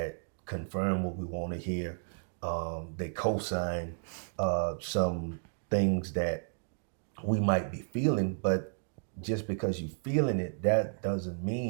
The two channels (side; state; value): left; silent; digital silence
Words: confirm what we want to hear. They co-sign some things that we might be feeling, but just because you're feeling it, that doesn't